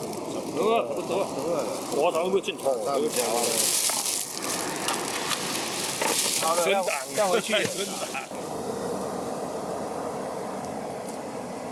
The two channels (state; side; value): identical; both; correlation 1.00